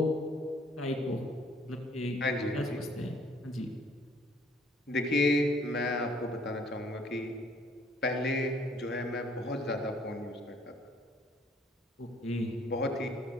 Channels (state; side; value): normal; both; correlation 0.61